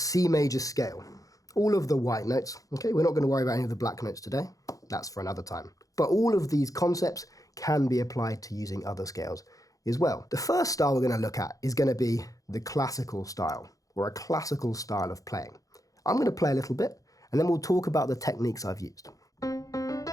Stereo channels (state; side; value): late; right; 0.17 ms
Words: major scale, all of the white notes. Okay, we're not going to worry about any of the black notes today, that's for another time. But all of these concepts can be applied to using other scales as well. The first style we're going to look at is going to be the classical style, or a classical style of playing. I'm going to play a little bit, and then we'll talk about the techniques I've used.